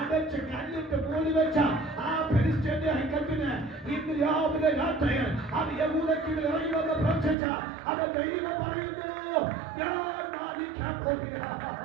കല്ലിട്ട് മൂടി വെച്ച ആ ഫെലിസ്ത്യന്റെ ഹൈക്കത്തിന് ഇന്ന് രാവിലെ രാത്രിയിൽ അത് യഹൂദയ്ക്ക് ഇറങ്ങി വന്ന് പ്രവർത്തിച്ച അത് ദൈവം പറയുന്നു, ഞാൻ മാനിക്കാൻ പോകുകയാണ്.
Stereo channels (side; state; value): left; drops out; at 7.4 s